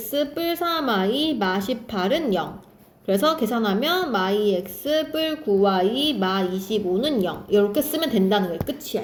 뿔 3y 마18은 0. 그래서 계산하면 마2x 뿔 9y 마25는 0. 이렇게 쓰면 된다는 거예요.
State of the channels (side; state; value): both; identical; correlation 1.00